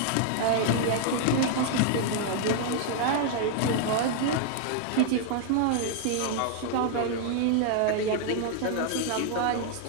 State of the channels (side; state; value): both; different; correlation 0.00